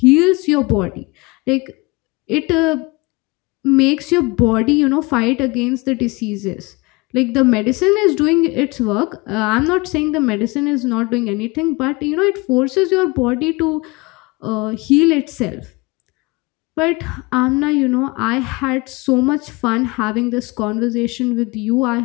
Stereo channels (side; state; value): right; quieter; 24.9 dB